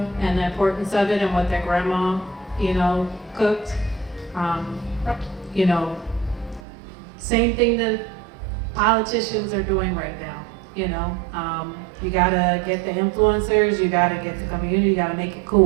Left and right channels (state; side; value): drops out; left; at 6.6 s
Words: and the importance of it and what their grandma, you know, cooked. You know, same thing that politicians are doing right now, you know. You gotta get the influencers, you gotta get the community, you gotta make it